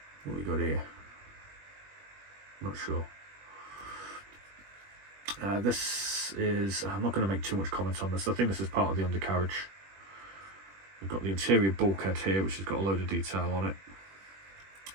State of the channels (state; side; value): late; left; 21 ms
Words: What we got here? Not sure. This is, I'm not going to make too much comment on this. I think this is part of the undercarriage. We've got the interior bulkhead here, which has got a load of detail on it.